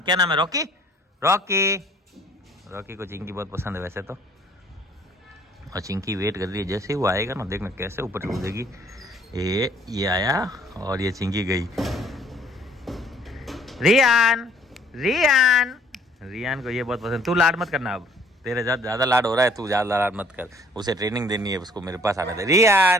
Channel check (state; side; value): normal; both; correlation 0.58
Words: नाम है? रॉकी। रॉकी को चिंकी बहुत पसंद है वैसे तो, और चिंकी वेट कर रही है, जैसे ही वो आएगा ना देखना कैसे ऊपर कूदेगी। ये आया और ये चिंकी गई। रियान को ये बहुत पसंद। तू लाड मत करना, अब तेरे ज़्यादा लाड हो रहा है, तू ज़्यादा लाड मत कर, उसे ट्रेनिंग देनी है, उसको मेरे पास आना दे।